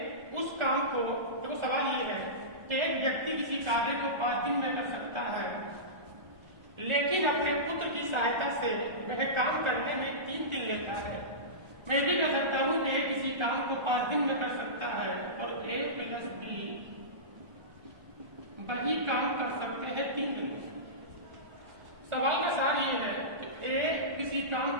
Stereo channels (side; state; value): left; late; 1.4 ms